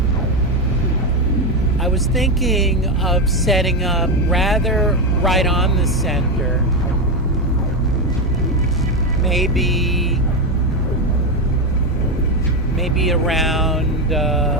I was thinking of setting up rather right on the center, maybe around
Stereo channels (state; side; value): normal; both; correlation 0.10